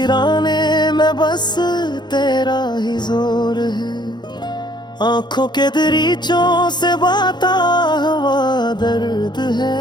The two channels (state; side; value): late; right; 0.21 ms